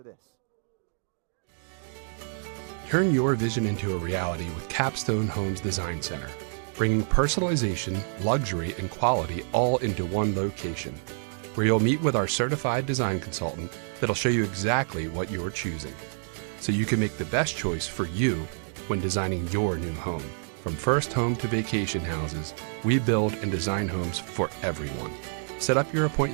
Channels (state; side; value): silent; left; digital silence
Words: this. Turn your vision into a reality with Capstone Homes Design Center, bringing personalization, luxury, and quality all into one location, where you'll meet with our certified design consultant that'll show you exactly what you're choosing, so you can make the best choice for you when designing your new home. From first home to vacation houses, we build and design homes for everyone. Set up your